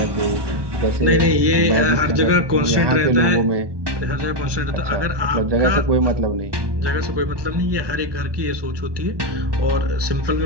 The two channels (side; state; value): left; late; 1.2 ms